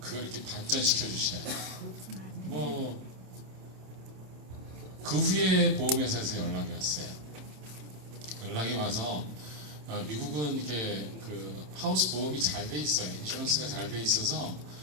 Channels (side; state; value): left; late; 27 ms